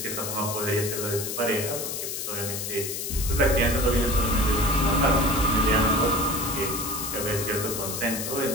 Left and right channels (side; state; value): left; noise; hiss, 4 dB below the sound